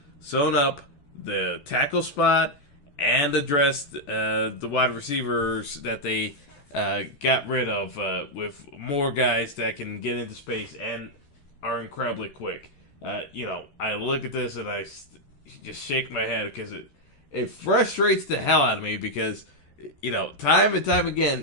sewn up the tackle spot and addressed the wide receivers that they got rid of with more guys that can get into space and are incredibly quick. I look at this and I just shake my head because it frustrates the hell out of me because, time and time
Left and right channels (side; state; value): right; late; 14 ms